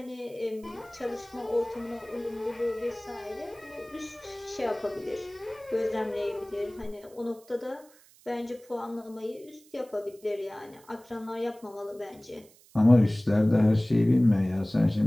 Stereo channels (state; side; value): noise; right; hiss, 27 dB below the sound